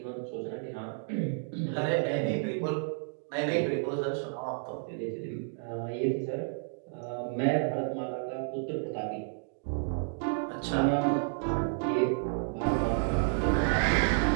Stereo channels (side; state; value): left; silent; digital silence